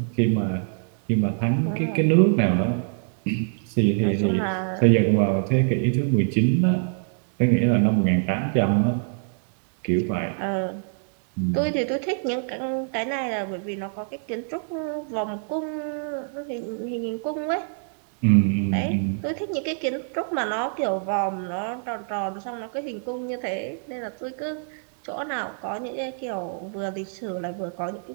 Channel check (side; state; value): left; silent; digital silence